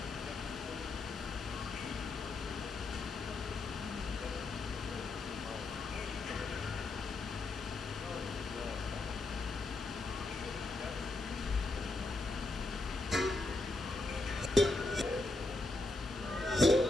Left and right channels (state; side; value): quieter; right; 3.0 dB